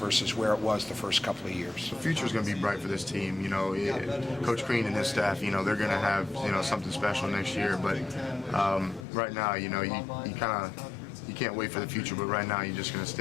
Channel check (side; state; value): right; drops out; at 9.1 s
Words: where it was the first couple of years. The future is going to be bright for this team. Coach Green and his staff, they're going to have something special next year. But right now, you can't wait for the future. But right now, you're just going to